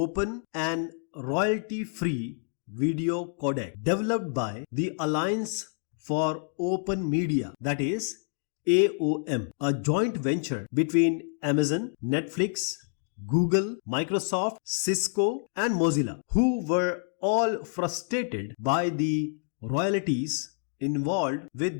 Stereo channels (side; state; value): right; silent; 59 dB below the other